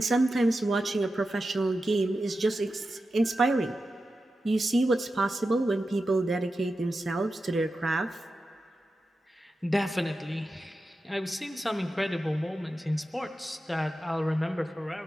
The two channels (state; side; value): normal; both; correlation 0.91